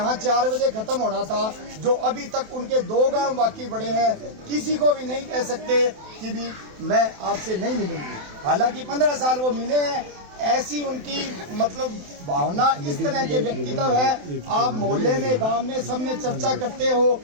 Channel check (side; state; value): left; late; 27 ms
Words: 4 बजे खत्म होना था, जो अभी तक उनके 2 गांव बाकी पड़े हैं। किसी को भी नहीं कह सकते कि भी मैं आपसे नहीं मिलूंगी। हालांकि 15 साल वो मिले हैं, ऐसी उनकी मतलब भावना, इस तरह के व्यक्तित्व है। आप मोहल्ले में, गांव में, सब में चर्चा करते हो।